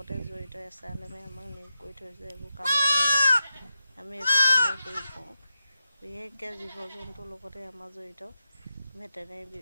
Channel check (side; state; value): both; inverted; correlation -0.89